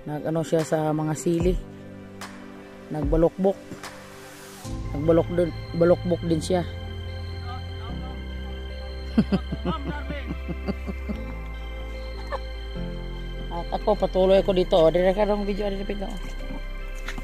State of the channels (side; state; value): both; identical; correlation 1.00